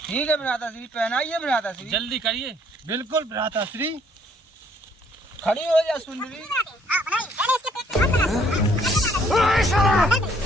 ठीक है भ्राता श्री, पहनाइए भ्राता श्री। जल्दी करिए। बिल्कुल भ्राता श्री। खड़ी हो जा सुंदरी।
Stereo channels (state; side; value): normal; both; correlation 0.64